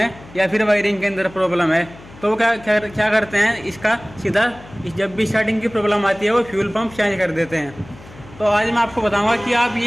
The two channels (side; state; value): left; noise; hum, 20 dB below the sound